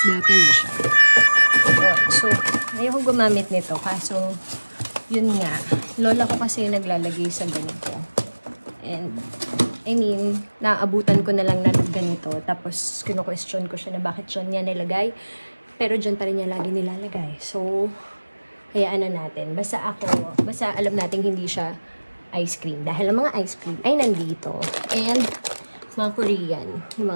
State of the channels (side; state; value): both; inverted; correlation -1.00